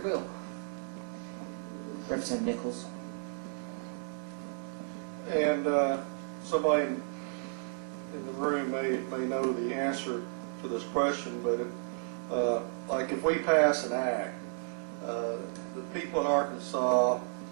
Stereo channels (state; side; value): silent; left; digital silence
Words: bill. Representative Nichols. And somebody in the room may know the answer to this question, but like if we pass an act, the people in Arkansas